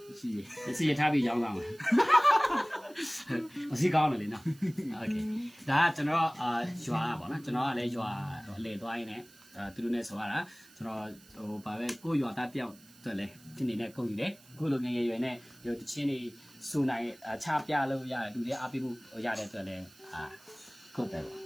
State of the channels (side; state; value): right; noise; hiss, 24 dB below the sound